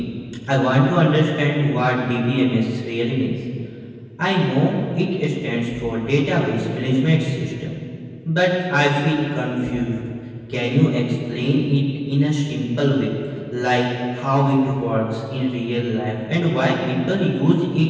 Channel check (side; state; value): both; identical; correlation 1.00